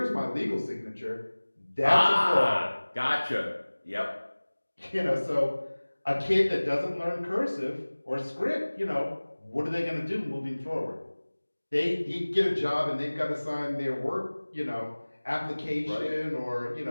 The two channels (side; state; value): both; inverted; correlation -1.00